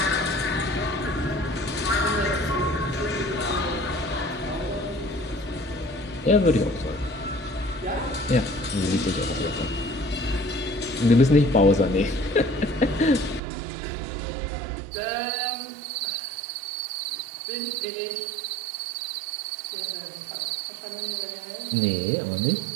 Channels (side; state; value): left; drops out; at 13.4 s